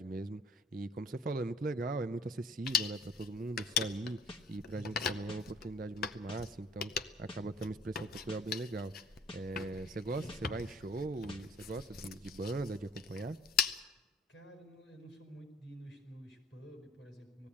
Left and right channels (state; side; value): normal; both; correlation 0.54